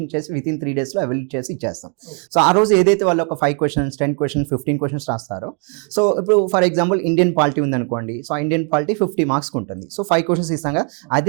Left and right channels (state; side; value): quieter; left; 39.7 dB